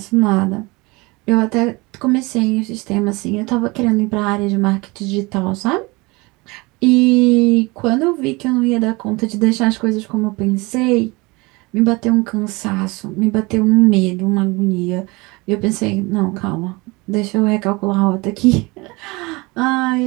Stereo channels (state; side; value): quieter; left; 24.7 dB